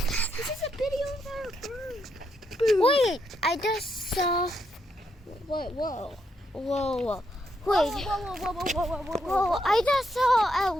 This is a video of a bird. Boom. Wait, I just saw. What? Whoa. Whoa. Whoa, Wait. whoa. I just saw a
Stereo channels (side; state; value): both; normal; correlation 0.79